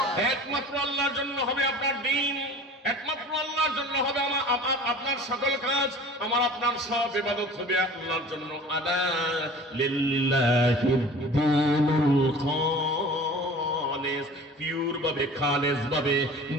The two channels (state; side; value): normal; both; correlation 0.42